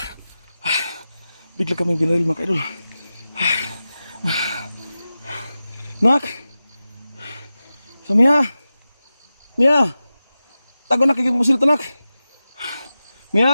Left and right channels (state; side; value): inverted; both; correlation -0.93